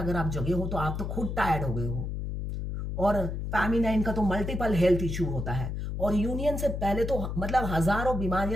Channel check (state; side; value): noise; left; hum, 4 dB below the sound